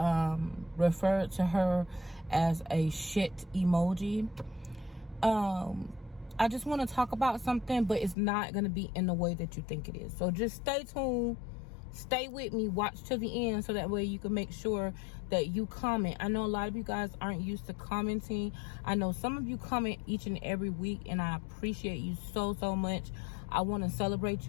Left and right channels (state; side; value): drops out; right; at 8.2 s